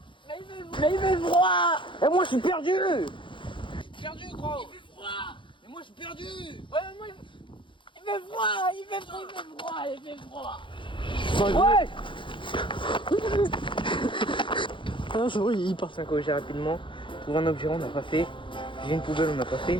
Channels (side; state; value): right; late; 0.24 ms